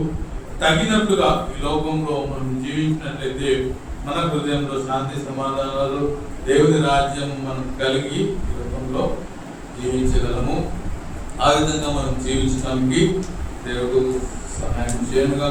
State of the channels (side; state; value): both; identical; correlation 1.00